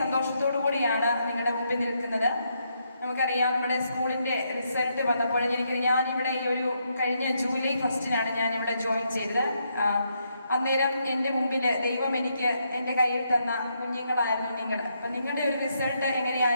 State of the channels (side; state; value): both; inverted; correlation -0.78